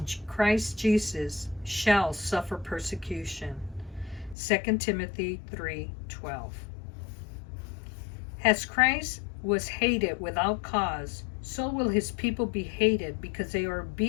Christ Jesus shall suffer persecution. 2 Timothy 3:12. As Christ was hated without cause, so will his people be hated because they are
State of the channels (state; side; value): drops out; right; at 4.4 s